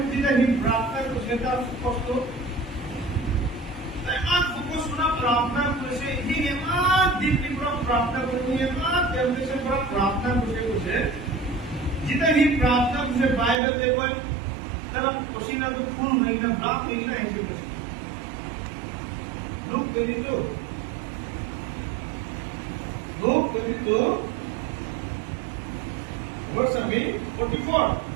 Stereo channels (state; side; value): drops out; left; at 13.6 s